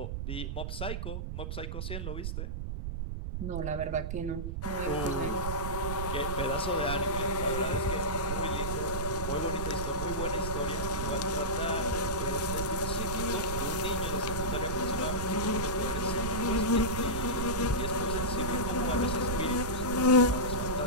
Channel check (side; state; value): right; noise; rumble, 3 dB below the sound